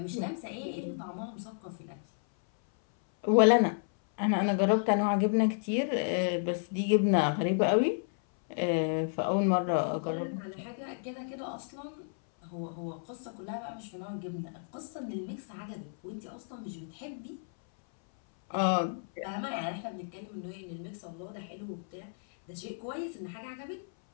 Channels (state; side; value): silent; right; 56 dB below the other